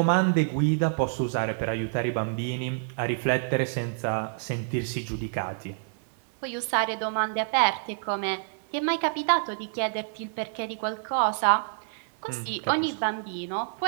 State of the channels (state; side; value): silent; left; digital silence